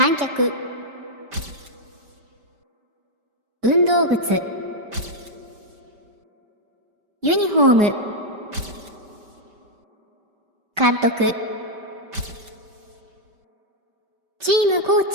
客運動靴ユニフォーム監督チームコー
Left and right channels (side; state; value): left; late; 5.1 ms